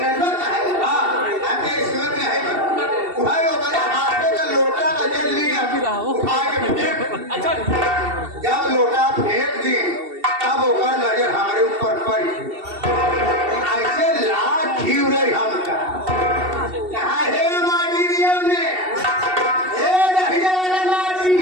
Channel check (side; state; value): left; late; 2.7 ms